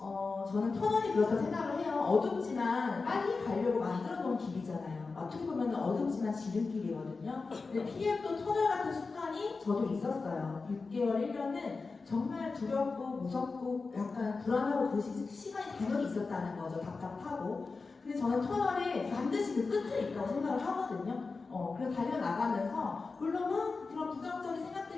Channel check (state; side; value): quieter; right; 4.2 dB